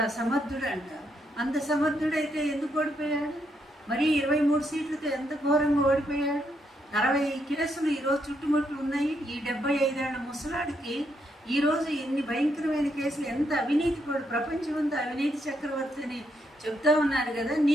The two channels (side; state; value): both; normal; correlation 0.77